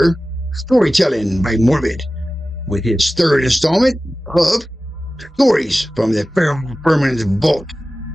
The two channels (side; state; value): both; normal; correlation 0.96